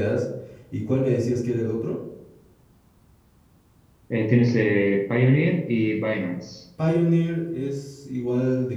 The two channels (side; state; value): both; identical; correlation 1.00